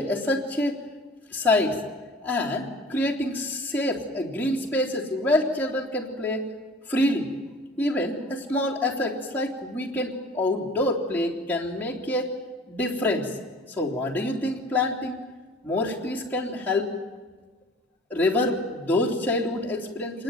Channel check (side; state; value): both; normal; correlation 0.45